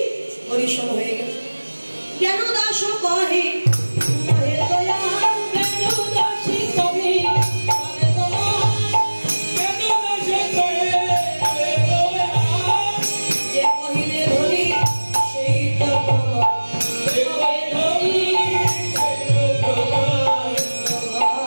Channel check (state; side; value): inverted; both; correlation -1.00